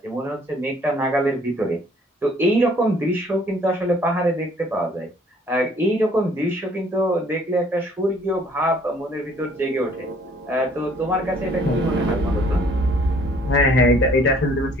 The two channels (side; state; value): both; normal; correlation 0.59